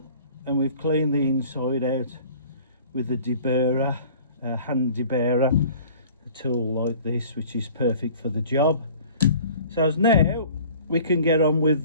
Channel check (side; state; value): both; inverted; correlation -0.47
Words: and we've cleaned the inside out with a deburrer, a hand deburrer, a tool like this, which is perfect for the job. So as now we can get on with